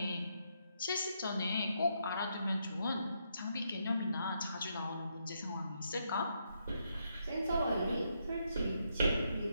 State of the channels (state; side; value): inverted; both; correlation -0.78